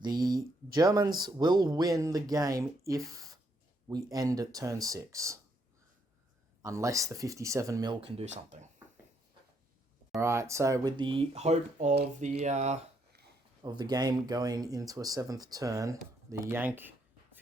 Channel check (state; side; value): normal; both; correlation 0.73